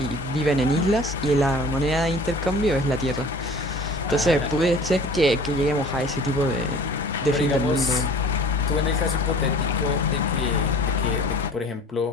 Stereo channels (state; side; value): normal; both; correlation 0.46